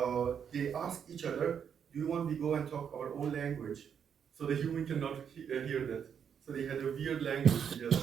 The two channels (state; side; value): quieter; left; 7.7 dB